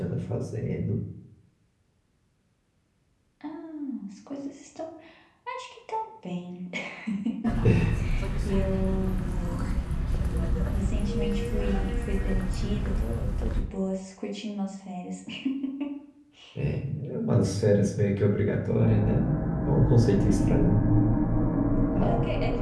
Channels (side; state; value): both; identical; correlation 1.00